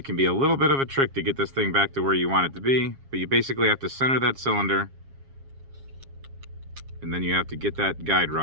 can be a little bit of a trick to get this thing back to where you want it to be, but you basically have to center that cylinder, and then you have to get that guide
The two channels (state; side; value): late; left; 7.3 ms